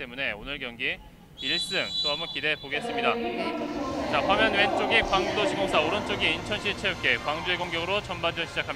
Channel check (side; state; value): both; identical; correlation 1.00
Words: 오늘 경기 1승 또 한번 기대해 보겠습니다. 자, 화면 왼쪽이 광주도시공사, 오른쪽이 인천시 체육회. 광주의 공격으로 전반전